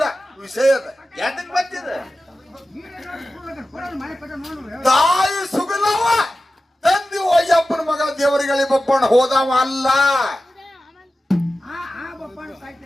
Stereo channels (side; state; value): both; normal; correlation 0.94